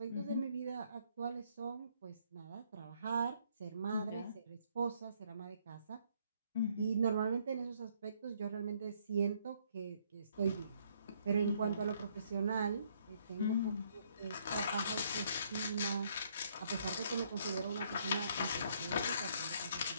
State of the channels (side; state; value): both; inverted; correlation -0.68